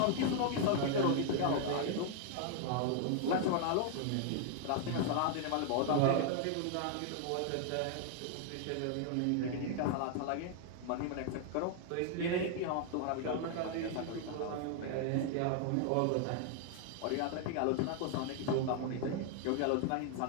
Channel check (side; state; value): both; different; correlation 0.00